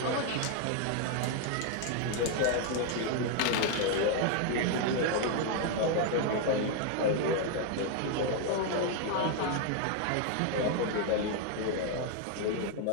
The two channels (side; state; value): both; different; correlation 0.00